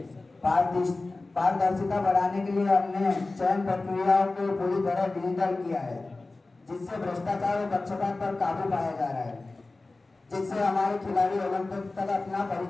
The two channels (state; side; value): quieter; right; 3.3 dB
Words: पारदर्शिता बढ़ाने के लिए हमने चयन प्रक्रियाओं को पूरी तरह डिजिटल किया है, जिससे भ्रष्टाचार और पक्षपात पर काबू पाया जा रहा है, जिससे हमारे खिलाड़ी ओलंपिक तक अपना